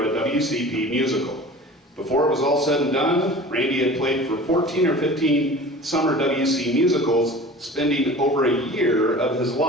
a WCP musical. Before it was all said and done, Randy had played for 14 or 15 summer WC musicals, spending over a year of his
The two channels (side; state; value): both; normal; correlation 0.41